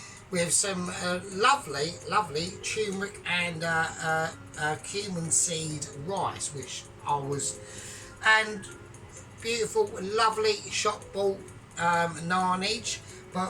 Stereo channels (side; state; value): both; identical; correlation 1.00